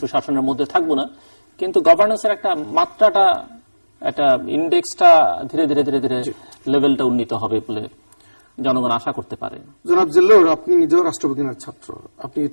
সুশাসনের মধ্যে থাকবো না, কিন্তু গভর্নেন্সের একটা মাত্রাটা, একটা ইন্ডেক্সটা ধীরে ধীরে ধীরে ধীরে লেভেলটা উন্নীত হবে বলে জনগণ আশা করতে পারে। জনাব জিল্লুর, আপনি নিজেও রাষ্ট্রবিজ্ঞানের ছাত্র, আপনি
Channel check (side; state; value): both; inverted; correlation -1.00